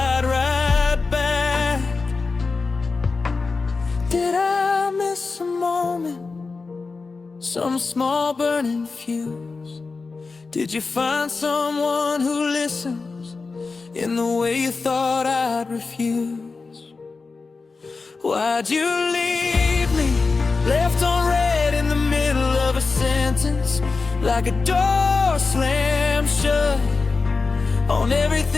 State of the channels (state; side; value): quieter; right; 4.2 dB